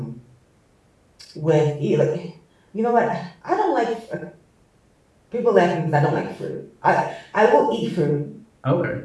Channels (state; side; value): identical; both; correlation 1.00